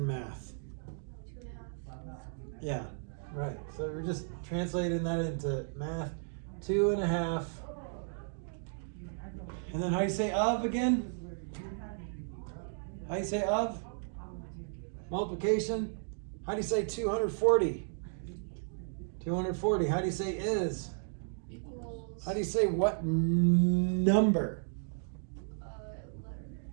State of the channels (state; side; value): silent; left; digital silence